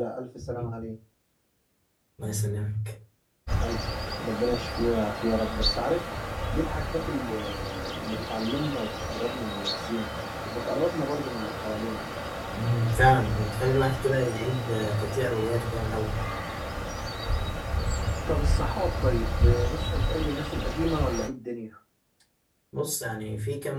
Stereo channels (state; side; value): identical; both; correlation 1.00